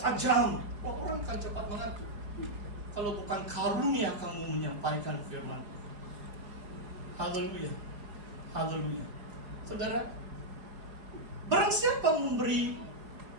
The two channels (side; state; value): left; late; 4.9 ms